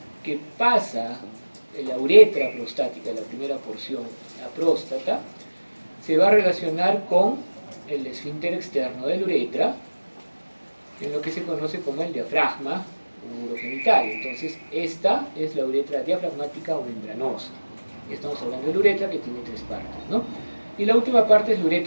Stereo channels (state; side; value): inverted; both; correlation -1.00